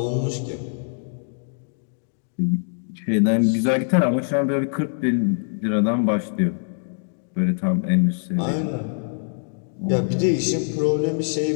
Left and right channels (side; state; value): right; silent; digital silence